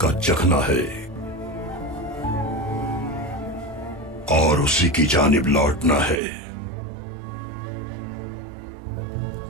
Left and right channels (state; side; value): drops out; left; at 6.2 s